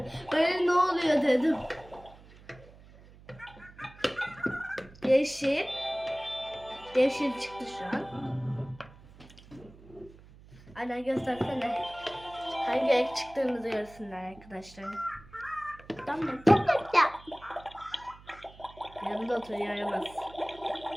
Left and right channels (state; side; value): noise; right; hum, 22 dB below the sound